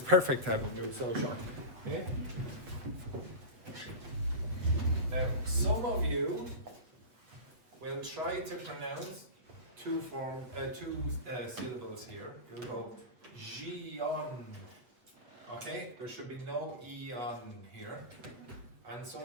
perfect having me so short. Okay. Now, some of you will try to pronounce two syllables here. You'll go Gion. Okay, there should be no E on here. And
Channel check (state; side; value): late; left; 8.0 ms